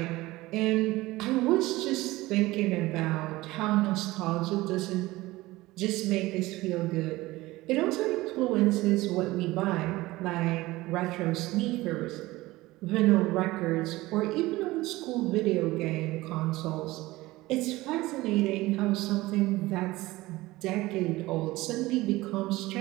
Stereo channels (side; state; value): left; quieter; 19.1 dB